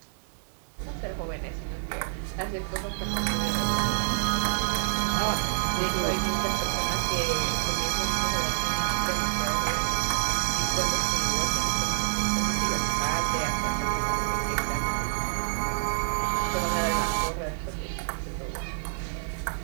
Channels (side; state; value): left; silent; digital silence